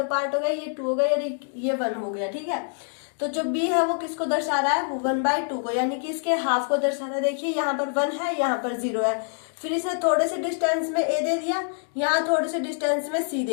पार्ट हो गया, ये 2 हो गया और ये 1 हो गया। ठीक है, तो जो b है वो किसको दर्शा रहा है, वो 1/2 को, यानी कि इसके हाफ को दर्शा रहा है। देखिए यहाँ पर 1 है, यहाँ पर 0 है, फिर इसे थोड़े से डिस्टेंस में a दे दिया, यहाँ थोड़े से डिस्टेंस में c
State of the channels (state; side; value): silent; right; 61 dB below the other